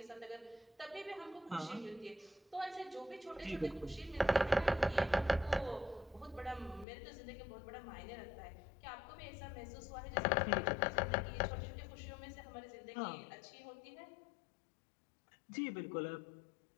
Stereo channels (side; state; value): right; drops out; at 6.9 s